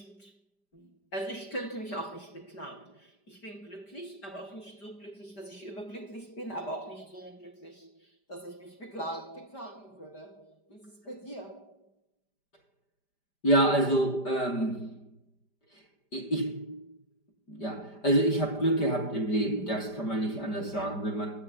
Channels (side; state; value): right; late; 5.0 ms